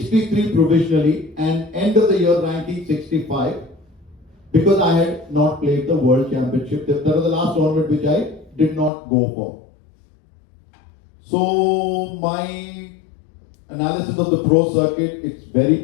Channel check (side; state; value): right; drops out; at 8.9 s